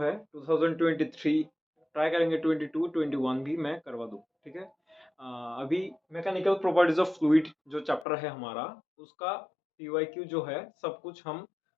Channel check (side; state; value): right; drops out; at 8.1 s